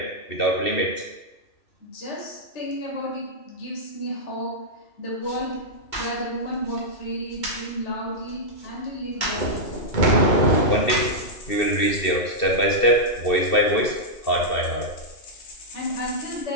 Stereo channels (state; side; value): late; right; 2.7 ms